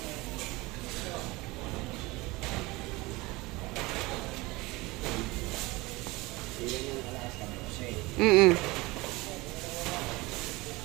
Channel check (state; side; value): quieter; left; 22.3 dB